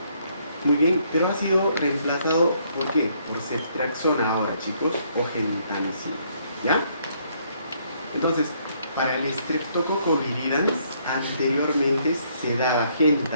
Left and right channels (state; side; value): inverted; both; correlation -0.69